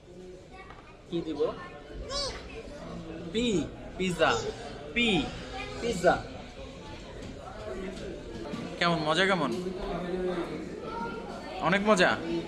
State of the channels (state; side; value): identical; both; correlation 1.00